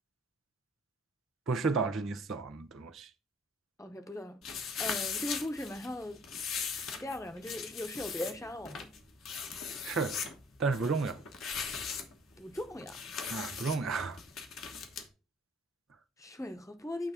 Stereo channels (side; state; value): both; normal; correlation 0.56